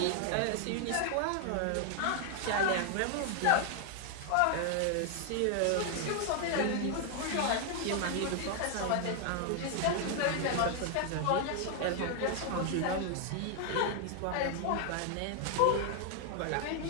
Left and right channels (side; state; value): both; different; correlation 0.00